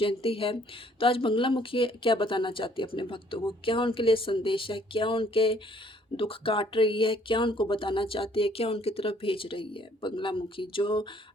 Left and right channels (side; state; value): both; normal; correlation 0.61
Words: है, तो आज बंगलामुखी क्या बताना चाहती है अपने भक्तों को, क्या उनके लिए संदेश है, क्या उनके दुख काट रही है, क्या उनको बताना चाहती है, क्या उनकी तरफ भेज रही है बंगलामुखी, जो